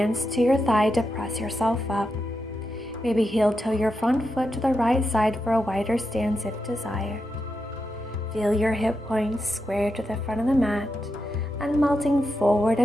to your thigh to press yourself up. Maybe heel toe your front foot to the right side for a wider stance if desired. Feel your hip points square to the front of the mat and melting forward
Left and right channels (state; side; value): normal; both; correlation 0.86